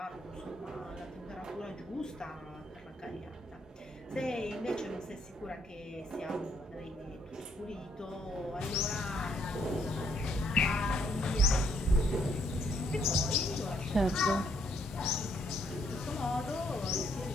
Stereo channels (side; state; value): both; normal; correlation 0.70